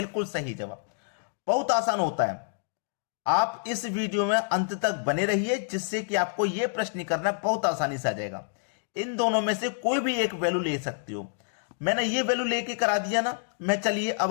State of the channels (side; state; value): right; silent; digital silence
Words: सही जवाब। बहुत आसान होता है। आप इस वीडियो में अंत तक बने रहिए, जिससे कि आपको यह प्रश्न करना बहुत आसानी से आ जाएगा। इन दोनों में से कोई भी एक वैल्यू ले सकते हो। मैंने ये वैल्यू लेके करा दिया ना, मैं चलिए